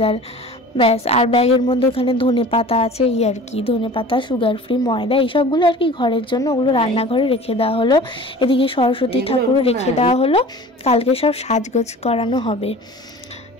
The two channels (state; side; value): normal; both; correlation 0.41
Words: ব্যাস। আর ব্যাগের মধ্যে ওখানে ধনেপাতা আছে, এই আর কি, ধনেপাতা, সুগার ফ্রি, ময়দা, এইসবগুলো আর কি ঘরের জন্য, ওগুলো রান্নাঘরে রেখে দেওয়া হলো। এদিকে সরস্বতী ঠাকুরও রেখে দেওয়া হলো, কালকে সব সাজগোজ করানো হবে।